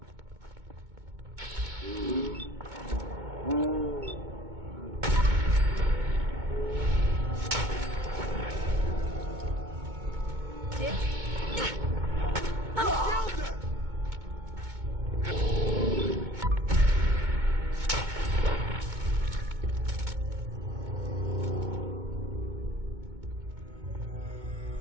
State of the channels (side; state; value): left; late; 2.2 ms